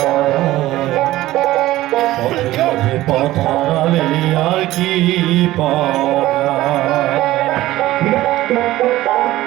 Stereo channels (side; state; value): left; quieter; 16.1 dB